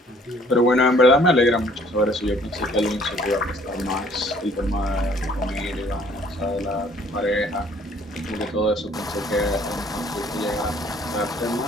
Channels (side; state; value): both; normal; correlation 0.58